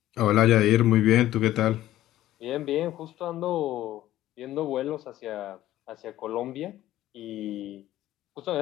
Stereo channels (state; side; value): quieter; right; 14.1 dB